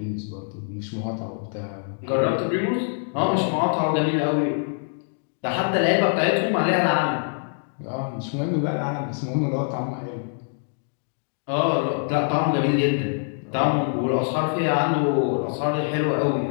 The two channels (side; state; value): right; silent; digital silence